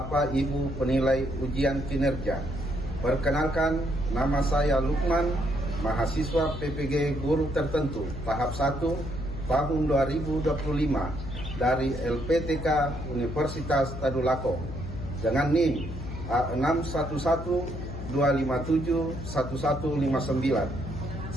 Ibu penilai ujian kinerja, perkenalkan nama saya Lukman, mahasiswa PPG Guru Tertentu tahap 1 tahun 2025 dari LPTK Universitas Tadulako dengan NIM A6112571159.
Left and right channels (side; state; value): left; noise; hum, 8 dB below the sound